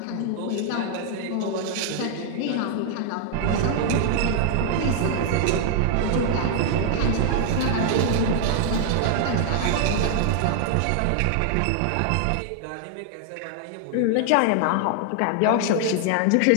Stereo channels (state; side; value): different; both; correlation 0.00